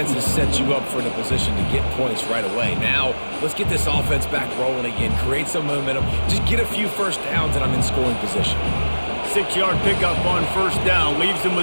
has set you up for the position to get points right away. Now, let's get this offense back rolling again, create some momentum, just get a few 1st downs, and I'm in scoring position. 6-yard pickup on 1st down, leaves him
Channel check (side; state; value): both; inverted; correlation -1.00